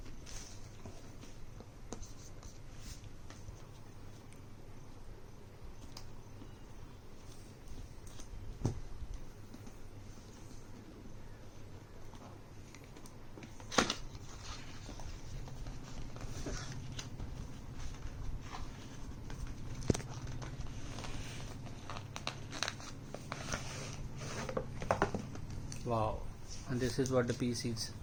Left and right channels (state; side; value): identical; both; correlation 1.00